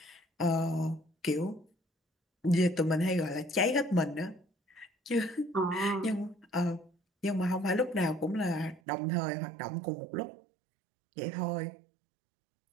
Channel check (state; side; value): drops out; left; at 8.8 s